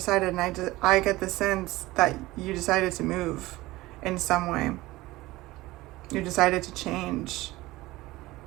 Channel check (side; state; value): left; quieter; 18.9 dB